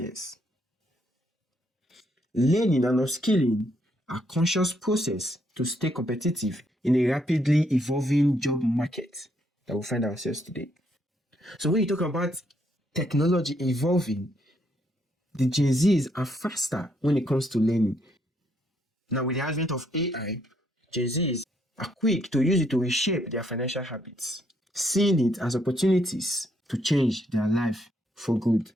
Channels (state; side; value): normal; both; correlation 0.73